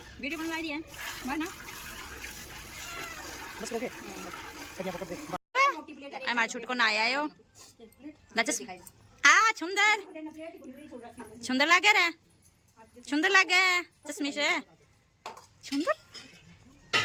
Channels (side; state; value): both; identical; correlation 1.00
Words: वीडियो बनवा दी है, मार ना बस। ओके हमारे छुट को ना आया हो लचस आ सुंदर सुंदर लगे रे, सुंदर लगे चश्मे से, सुंदर